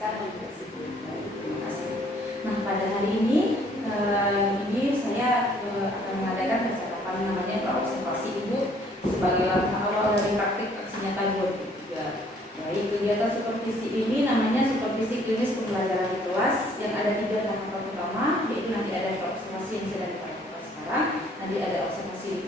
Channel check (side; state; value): both; normal; correlation 0.61